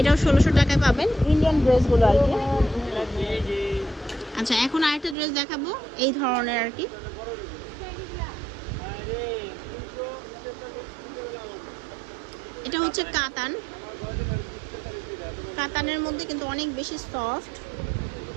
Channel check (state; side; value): drops out; left; at 5.2 s